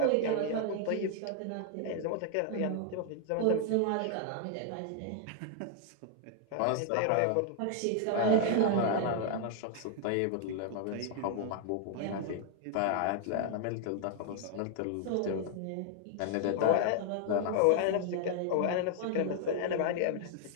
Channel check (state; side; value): different; both; correlation 0.00